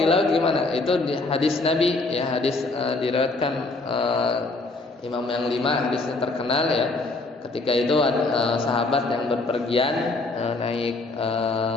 di laut gimana? Itu di hadis Nabi ya, hadis diriwayatkan Imam yang 5, hadisnya terkenal ya. Ketika itu sahabat yang berpergian naik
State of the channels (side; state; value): right; quieter; 3.3 dB